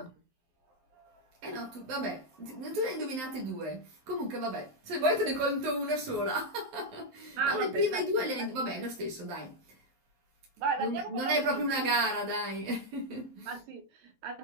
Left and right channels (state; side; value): late; left; 12 ms